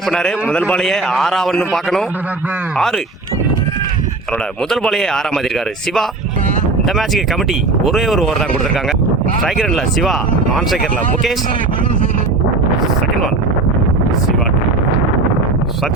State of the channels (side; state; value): left; quieter; 3.4 dB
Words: பண்ணாரு. முதல் பாலையே 6 பார்க்கணும். 6 அவரோட முதல் பாலையே 6 மாற்றிருக்காரு சிவா. இந்த மேட்சுக்கு கமிட்டி ஒரே ஒரு ஓவர் தான் கொடுத்துருக்காங்க. ஸ்ட்ரைக்கரில் சிவா, நான் ஸ்ட்ரைக்கரில் Mukesh. Second one Siva